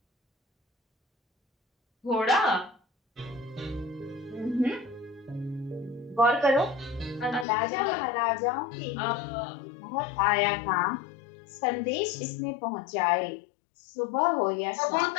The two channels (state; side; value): drops out; right; at 7.5 s